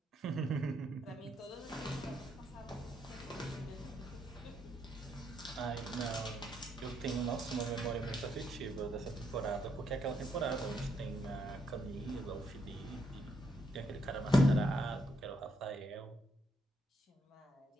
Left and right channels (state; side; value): normal; both; correlation 0.75